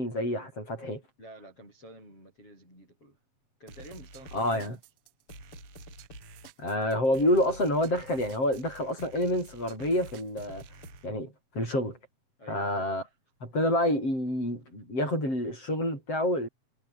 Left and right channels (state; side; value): late; right; 7.6 ms